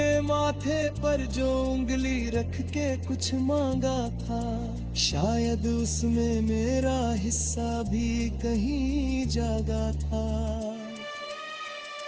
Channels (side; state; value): both; identical; correlation 1.00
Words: माथे पर जो उंगली रख के कुछ मांगा था, शायद उसमें मेरा हिस्सा भी कहीं जागा था।